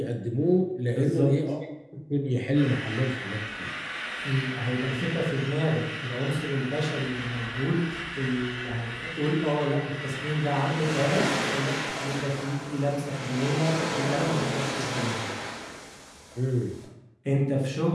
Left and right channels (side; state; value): both; identical; correlation 1.00